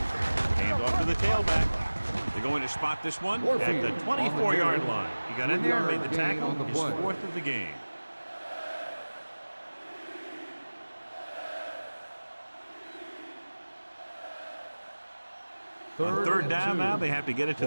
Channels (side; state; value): both; inverted; correlation -1.00